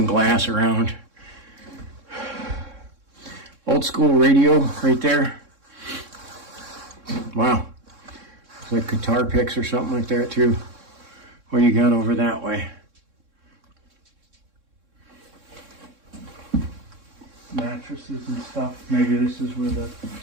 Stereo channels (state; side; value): late; left; 3.6 ms